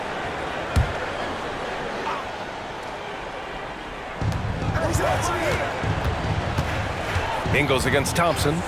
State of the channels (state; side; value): identical; both; correlation 1.00